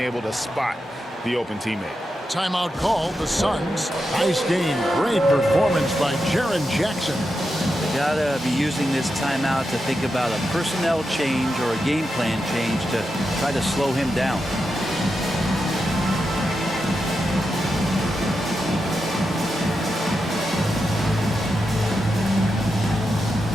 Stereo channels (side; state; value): both; normal; correlation 0.87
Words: to spot the open teammate. Timeout called the Suns. Nice game. Great performance by Jaren Jackson. They gotta be using this timeout to think about a personnel change or a game plan change to try to slow him down.